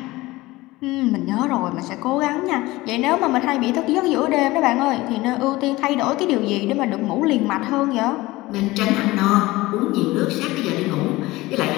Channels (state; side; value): quieter; right; 19.5 dB